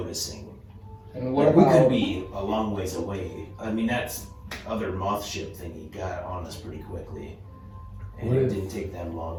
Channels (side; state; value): both; identical; correlation 1.00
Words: And what Like, about we could be a long ways away. I mean, that's other moth ship thingy got on us pretty quickly, and What it if- didn't take them